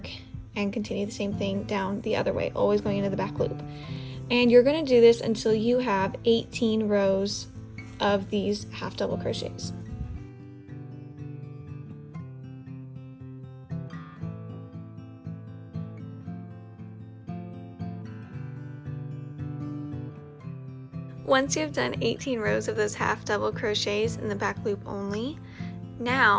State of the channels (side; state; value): both; identical; correlation 1.00